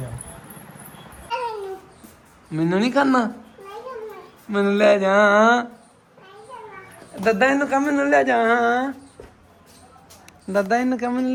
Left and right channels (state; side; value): identical; both; correlation 1.00